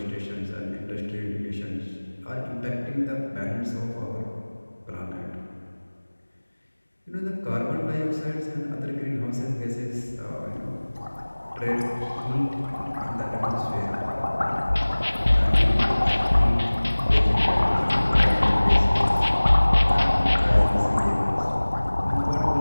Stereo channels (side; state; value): both; inverted; correlation -1.00